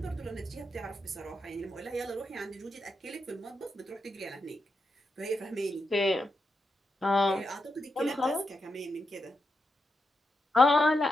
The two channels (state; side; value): normal; both; correlation 0.85